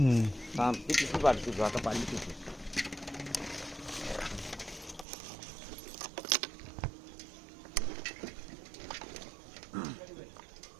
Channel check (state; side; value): drops out; left; at 5.1 s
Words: थांब ती किती वाटते तू आता पाणी किती